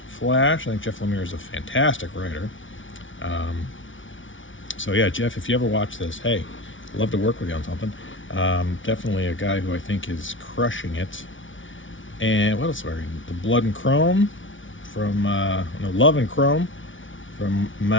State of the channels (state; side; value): late; right; 0.56 ms